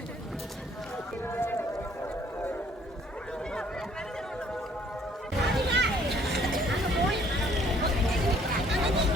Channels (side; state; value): both; normal; correlation 0.60